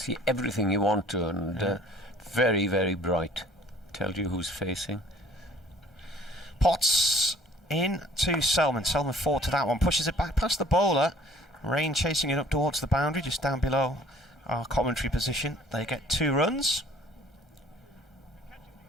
everything you want to, and very, very bright. Tells you who's facing. Potts in to Selman. Selman forward to that one, pushes it back past the bowler. Rain chasing it up towards the boundary, just down below our commentary position. They get 2 runs.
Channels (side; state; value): both; normal; correlation 0.55